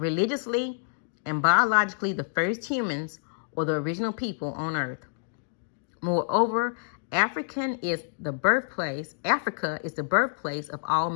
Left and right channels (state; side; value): silent; right; digital silence